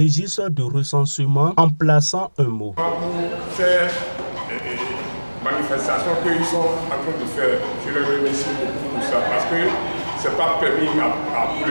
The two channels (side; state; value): both; inverted; correlation -1.00